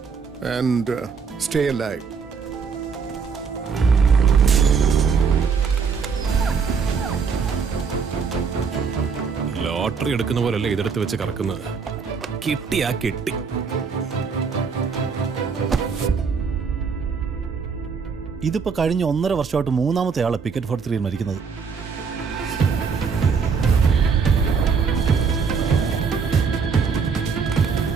and stay alive. Lottery എടുക്കുന്ന പോലല്ലേ ഇതെടുത്ത് വെച്ച് കറക്കുന്നത്. കിട്ടിയാ കിട്ടി. ഇതിപ്പോ കഴിഞ്ഞ 1.5 വർഷമായിട്ട് 3ാമത്തെ ആളെ പിക്കറ്റ് 43 മരിക്കുന്നത്.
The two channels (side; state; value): left; quieter; 5.7 dB